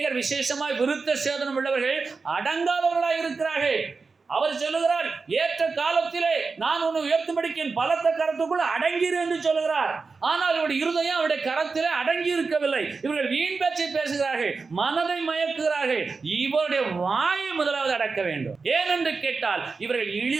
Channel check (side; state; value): left; quieter; 4.5 dB